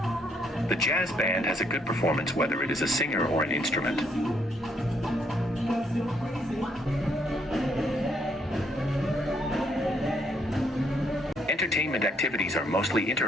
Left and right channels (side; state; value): both; normal; correlation 0.71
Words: The jazz band has a good performance whether it is a singer or an instrument. Entertainment activities are mostly